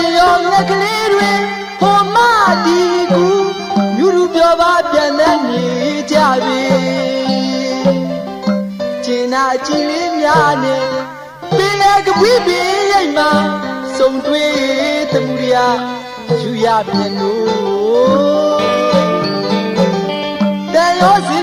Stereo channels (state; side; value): identical; both; correlation 1.00